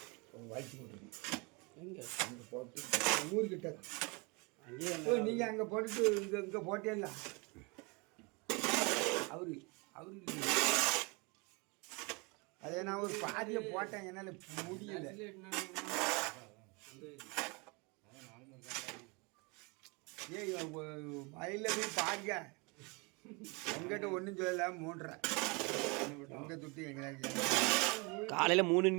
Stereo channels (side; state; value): left; quieter; 29.4 dB